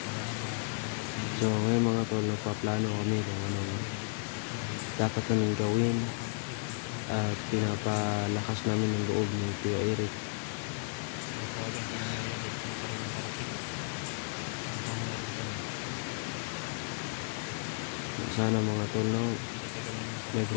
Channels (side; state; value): right; silent; digital silence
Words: So ngayon mga tol, nagpaplano kami kung ano dapat namin gawin at pinapalakas namin ang loob ni Kuya Eric. Sana mga tol, no, may